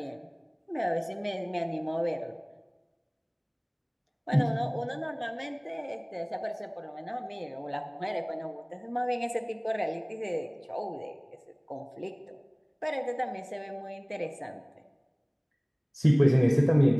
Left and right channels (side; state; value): both; identical; correlation 1.00